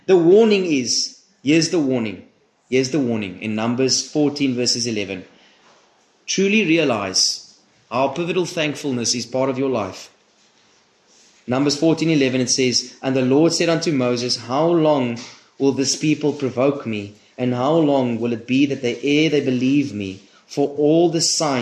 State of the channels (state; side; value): identical; both; correlation 1.00